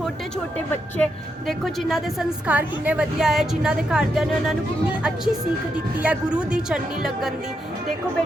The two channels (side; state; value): both; normal; correlation 0.82